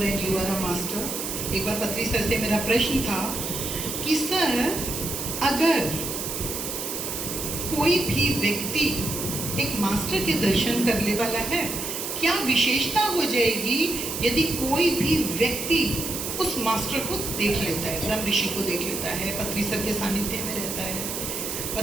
and you are a master. एक बार पत्री सर से मेरा प्रश्न था कि सर, अगर कोई भी व्यक्ति एक मास्टर के दर्शन करने वाला है, क्या विशेषता हो जाएगी यदि कोई भी व्यक्ति उस मास्टर को देख लेता है, ब्रह्म ऋषि को देख लेता है, पत्री सर के सानिध्य में रहता है?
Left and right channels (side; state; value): right; noise; hiss, 4 dB below the sound